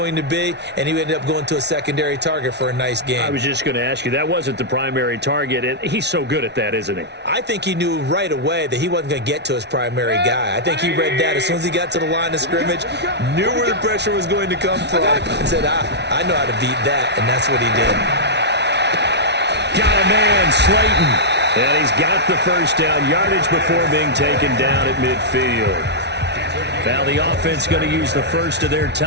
to be, and he ended up going to a secondary target for a nice game. I was just going to ask you, that wasn't the primary target, and he's so good at that, isn't he? I think he knew right away that he wasn't going to get to his primary guy. I think he read that as soon as he got to the line of scrimmage, knew where the pressure was going to come from, and said, I know how to beat that, and that's what he did. Got a man, Slayton. And he's got the first down yardage before being taken down at midfield. Now the offense going to use the first of their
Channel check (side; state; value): left; late; 0.50 ms